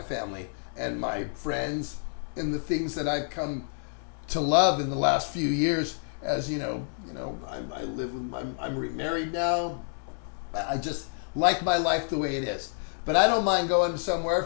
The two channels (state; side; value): silent; right; digital silence